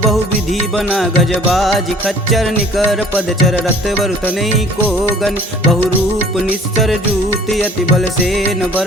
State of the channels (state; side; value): normal; both; correlation 0.52